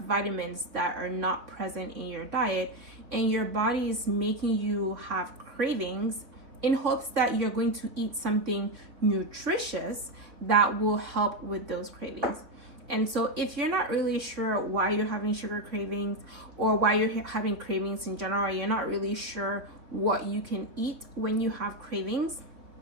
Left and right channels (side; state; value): left; late; 3.3 ms